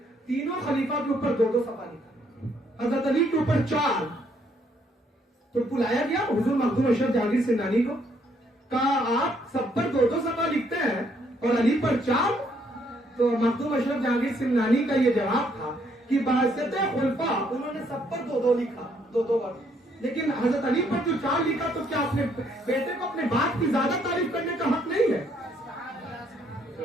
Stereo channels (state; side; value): normal; both; correlation 0.69